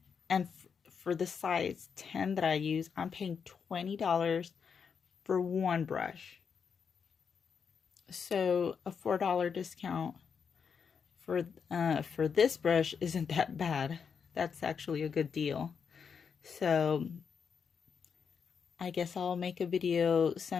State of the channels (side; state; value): right; quieter; 6.4 dB